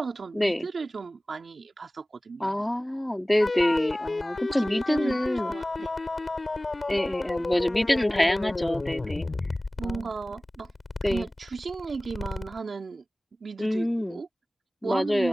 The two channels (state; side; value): normal; both; correlation 0.98